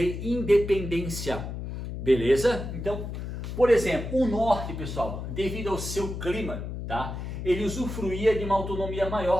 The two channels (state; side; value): noise; left; hum, 6 dB below the sound